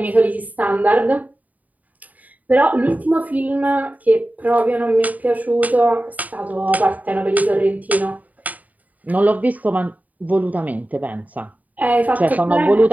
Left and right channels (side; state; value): left; late; 0.076 ms